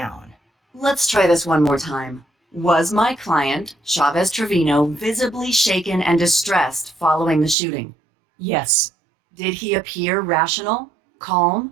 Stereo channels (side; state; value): left; drops out; at 7.6 s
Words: Let's try this one more time. Was my client, Chavez Trevino, visibly shaken and distressed following the shooting? Yes. Did he appear rational,